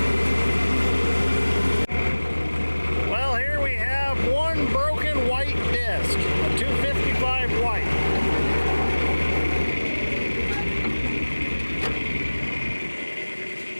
Well, here we have one broken white disc, a 255 white.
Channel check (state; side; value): inverted; both; correlation -1.00